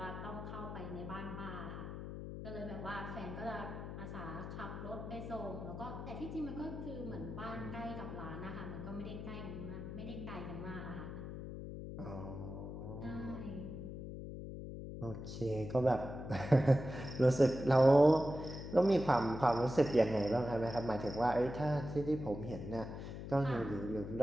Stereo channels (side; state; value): left; noise; hum, 8 dB below the sound